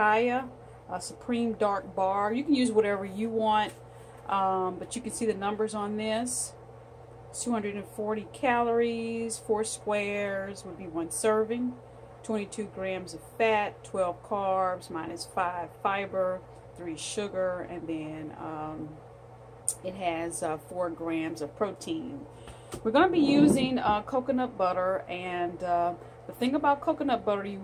supreme dark bar. You can use whatever you want. But you can see the numbers on this. 240 calories, 4 squares would be 1 serving, 22 grams of fat, 12 carbs, minus 5 fiber, 3 sugar, and then it has 4 grams of protein. We're going to be using coconut butter, and the thing about coconut butter, you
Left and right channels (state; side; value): identical; both; correlation 1.00